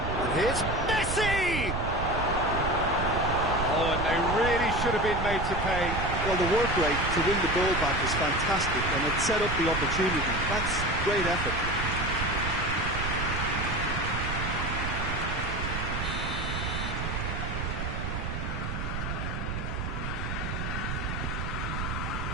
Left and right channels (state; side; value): noise; right; rumble, 3 dB below the sound